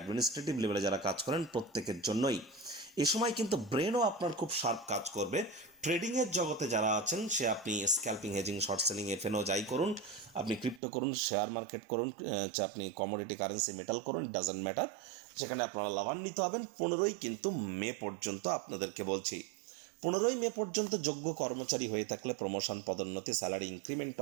লেভেলে যারা কাজ করেন প্রত্যেকের জন্যই এ সময় কিন্তু ব্রেনও আপনার খুব শার্প কাজ করবে। ট্রেডিংয়ের জগতে যারা আছেন, সে আপনি scalping, hedging, short selling, F&O যাই করুন, আপনি ক্রিপ্টো করুন, শেয়ার মার্কেট করুন, আপনি কমোডিটি কারেন্সি মেটাল করুন, ডাজন্ট ম্যাটার, সেখানে আপনারা লাভান্বিত হবেন। 15 মে পর্যন্ত আপনাদেরকে বলছি, 15 মে পর্যন্ত যোগ্য কর্মচারী হয়ে থাকলে প্রমোশন, পদোন্নতি, স্যালারি ইনক্রিমেন্টও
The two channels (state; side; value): drops out; left; at 10.8 s